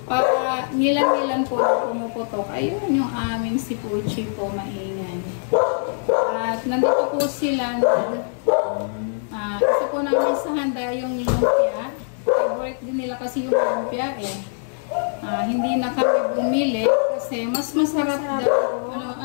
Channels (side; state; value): right; silent; digital silence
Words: ngilang-ngilang po na pumuputok. Ayun yung aming si Puchi po, maingay. At nandito po sila na isa po namin sa handa yung lumpia. Favorite din nila kasi yung lumpia eh. Hindi na kami bumili kasi mas masarap daw.